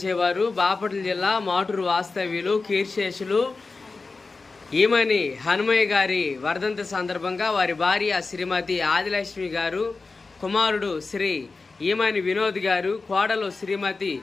చేవారు బాపట్ల జిల్లా మాటూరు వాస్తవ్యులు కీర్శేషులు ఈమని హనుమయ్య గారి వర్ధంతి సందర్భంగా వారి భార్య శ్రీమతి ఆదిలక్ష్మి గారు, కుమారుడు శ్రీ ఈమని వినోద్ గారు, కోడలు శ్రీమతి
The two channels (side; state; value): right; quieter; 4.0 dB